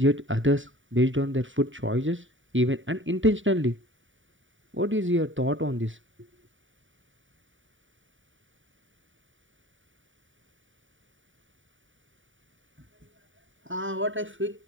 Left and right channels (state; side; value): late; left; 0.56 ms